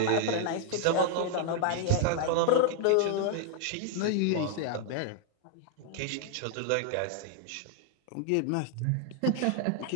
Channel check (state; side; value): different; both; correlation 0.00